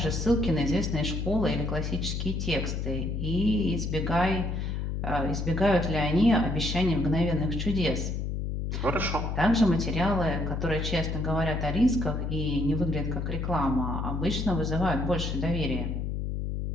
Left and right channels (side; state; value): left; noise; hum, 2 dB below the sound